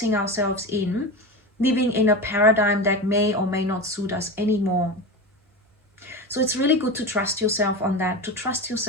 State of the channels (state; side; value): normal; both; correlation 0.24